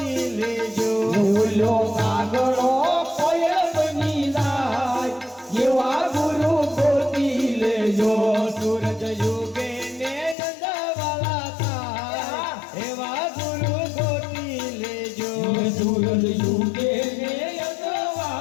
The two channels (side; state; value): right; drops out; at 10.4 s